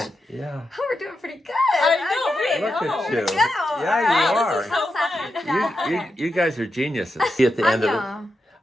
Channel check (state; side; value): normal; both; correlation 0.87